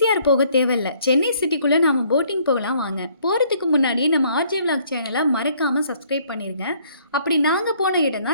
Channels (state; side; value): inverted; both; correlation -0.63